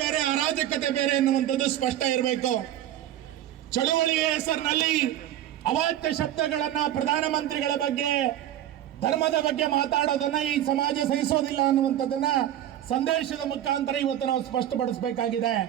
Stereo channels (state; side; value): quieter; left; 12.1 dB